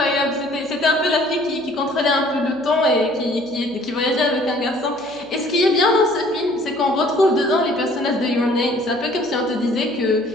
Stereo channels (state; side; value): noise; right; hum, 26 dB below the sound